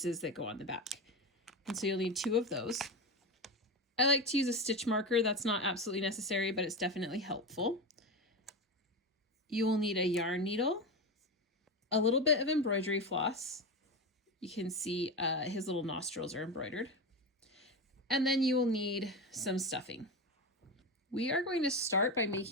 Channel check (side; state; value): both; normal; correlation 0.19